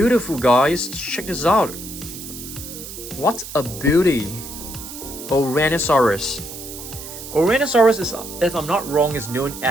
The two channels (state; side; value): noise; right; hiss, 11 dB below the sound